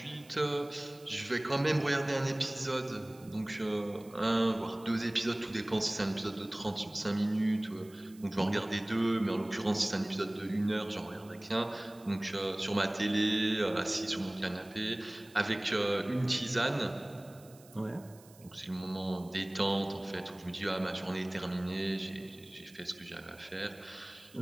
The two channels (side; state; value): right; noise; hiss, 24 dB below the sound